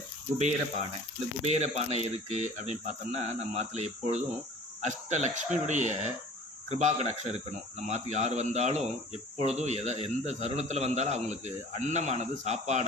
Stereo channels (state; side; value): normal; both; correlation 0.45